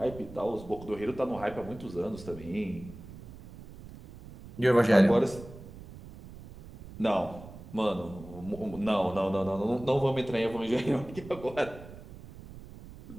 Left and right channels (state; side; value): noise; right; rumble, 16 dB below the sound